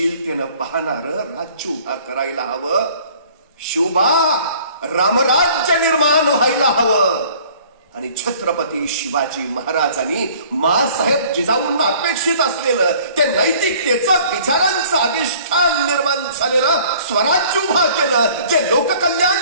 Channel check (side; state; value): both; inverted; correlation -0.53